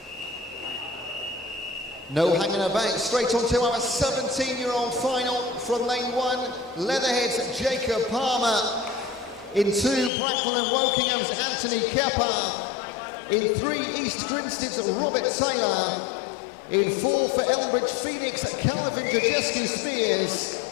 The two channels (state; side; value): drops out; right; at 10.1 s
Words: No hanging about, straight on to our 17-year-old final from lane 1, Leatherhead's Jacob Palmer. In 2, Bracknell and Wokingham's Anthony Kepper. In 3, East Grinstead's Robert Taylor. In 4, for Elmbridge Phoenix, Calvin Jajescu Spears.